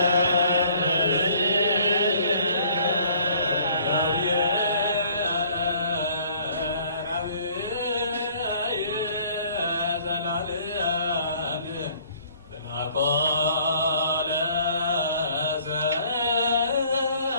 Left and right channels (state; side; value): inverted; both; correlation -0.57